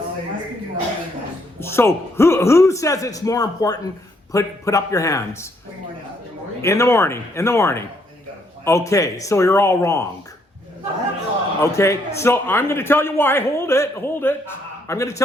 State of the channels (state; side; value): normal; both; correlation 0.71